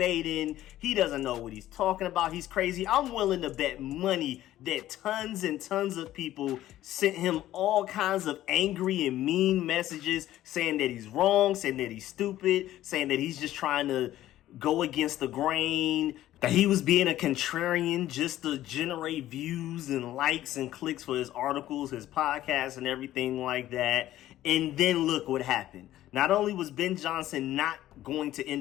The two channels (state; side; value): quieter; right; 13.9 dB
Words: He doesn't know what he's talking about. He's crazy. I'm willing to bet money that tons and tons of people sent him all kinds of angry and mean messages saying that he's wrong, saying that he's stupid, saying that he's just trying to go against the grain, that he was being a contrarian just to generate views and likes and clicks for his articles, his podcasts, and everything like that. And then look what happened. Not only was Ben Johnson not going to